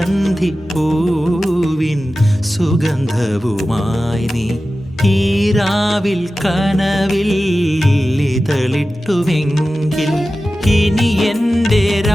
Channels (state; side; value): normal; both; correlation 0.94